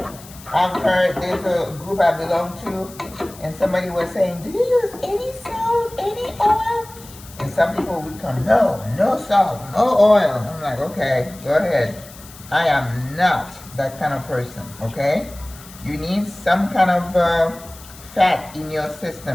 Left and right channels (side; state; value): left; noise; hiss, 19 dB below the sound